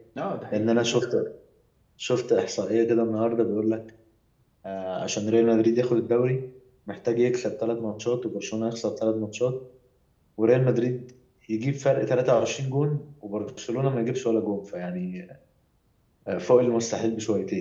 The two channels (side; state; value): both; identical; correlation 1.00